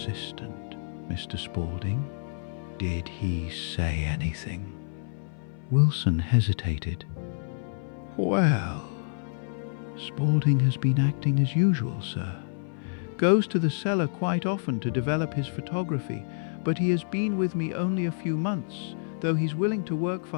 Mr. Spaulding? Did he say anything?" Wilson hesitated. "Well, Spaulding has been acting as usual, sir. Goes to the cellar quite often to develop his photography, but he has been with me only a few months, though he's willing to work for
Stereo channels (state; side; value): silent; right; 56 dB below the other